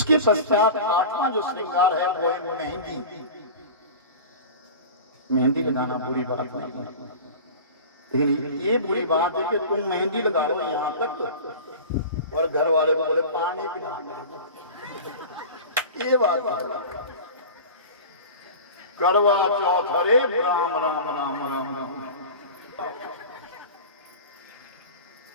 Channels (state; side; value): inverted; both; correlation -0.34